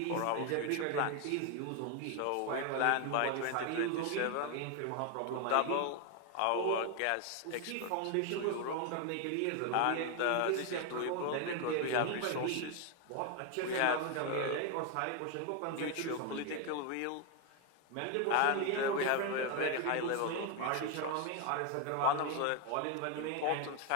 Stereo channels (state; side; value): different; both; correlation 0.01